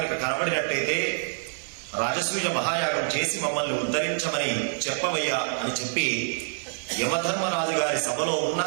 కనబడినట్టయితే రాజసూయ మహాయాగం చేసి మమ్మల్ని ఉద్ధరించమని చెప్పవయ్యా అని చెప్పి యమధర్మరాజు గారి సభలో ఉన్న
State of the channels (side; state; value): left; silent; digital silence